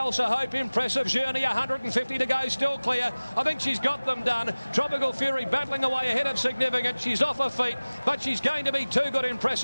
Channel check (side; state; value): both; inverted; correlation -0.99